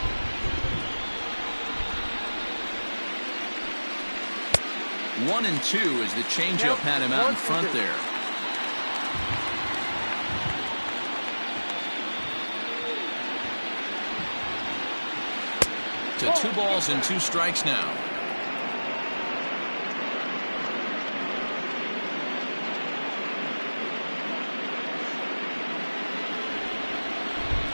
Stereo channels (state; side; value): inverted; both; correlation -1.00